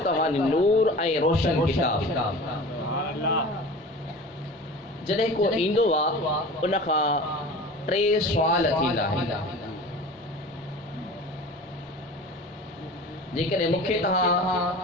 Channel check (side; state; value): both; normal; correlation 0.38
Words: توانی نور اے روشن کتاب جڑے کو ایندو وا ان کا ٹرے سوال تھیندا ہے جيڪڏهن مونکي